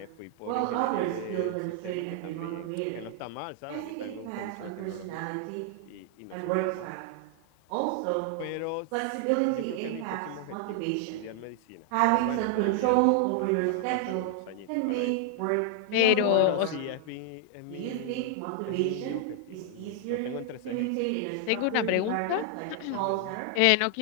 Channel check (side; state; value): both; different; correlation 0.00